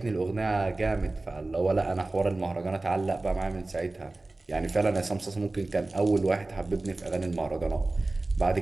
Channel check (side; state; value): left; quieter; 3.0 dB